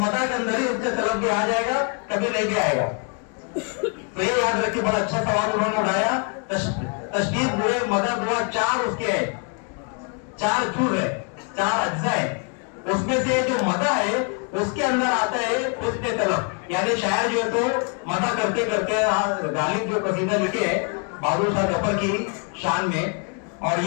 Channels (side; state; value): right; quieter; 38.2 dB